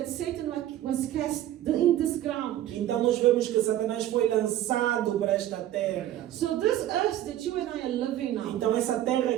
Satan was cast in this ground. Então nós vemos que Satanás foi lançado para esta terra. So this earth that you and I are living now, Então essa terra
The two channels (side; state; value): left; quieter; 12.8 dB